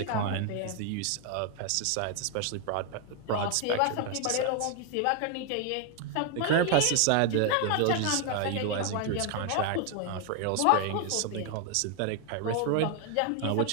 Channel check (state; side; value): different; both; correlation 0.00